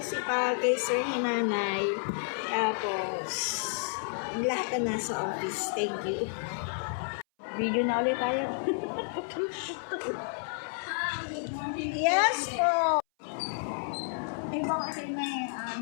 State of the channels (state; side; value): silent; right; 57 dB below the other